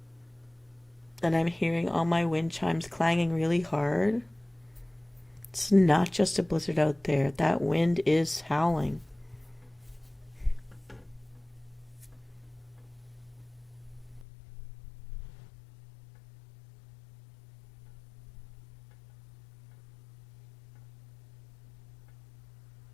And I'm hearing all my wind chimes clanging really hard. It's not just a blizzard out there. That wind is howling.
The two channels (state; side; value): drops out; right; at 14.2 s